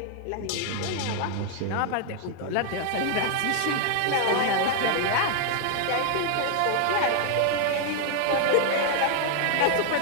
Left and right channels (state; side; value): different; both; correlation 0.00